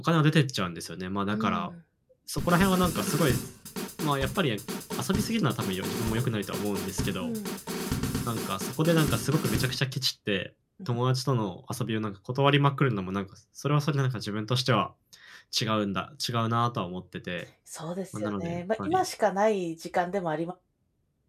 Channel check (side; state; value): both; identical; correlation 1.00